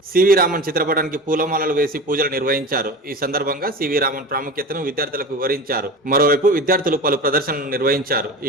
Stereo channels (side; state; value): both; normal; correlation 0.31